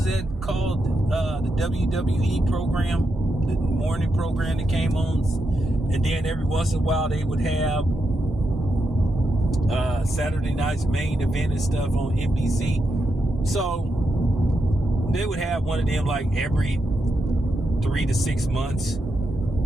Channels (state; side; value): normal; both; correlation 0.84